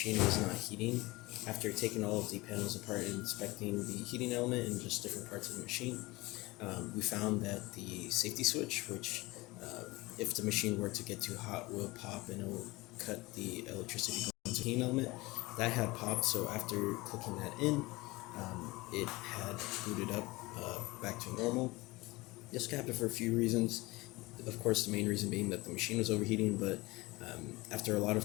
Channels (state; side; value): quieter; right; 21.7 dB